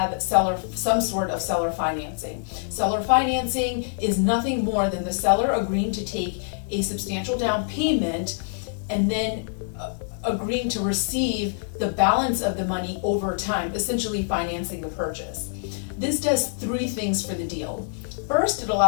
some sort of seller financing. Seller financing is nothing more than the seller agreeing to take a substantial down payment and then agreeing to receive the balance of the money over time, essentially financing the purchase. This does three things for the deal. First, it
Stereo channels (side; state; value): right; silent; 62 dB below the other